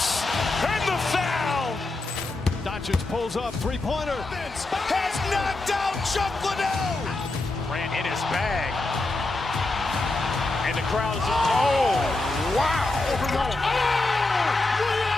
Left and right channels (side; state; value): right; quieter; 3.0 dB